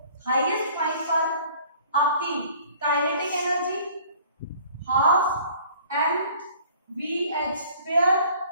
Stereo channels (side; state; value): both; inverted; correlation -0.52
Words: हाईएस्ट पॉइंट पर आपकी kinetic energy half M v h square